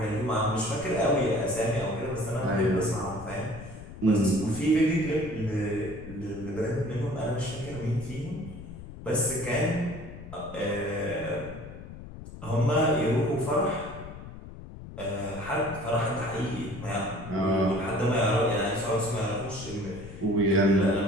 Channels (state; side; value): noise; left; rumble, 13 dB below the sound